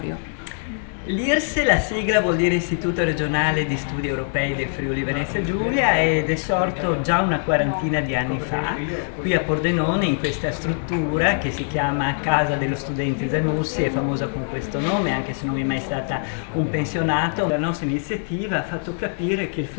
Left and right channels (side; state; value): right; silent; 64 dB below the other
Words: L'IRSE, la sigla vuol dire Istituto Regionale di Studi Europei del Friuli Venezia Giulia ed è sorto già una quarantina di anni fa qui a Pordenone in questa struttura che si chiama Casa dello Studente Zanussi, è famosa con questo nome anche se non è mai stata un pensionato. La nostra iniziativa ha fatto capire che il